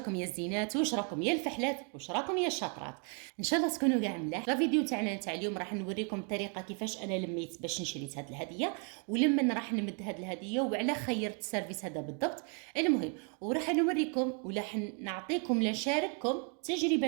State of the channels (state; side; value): quieter; left; 39.6 dB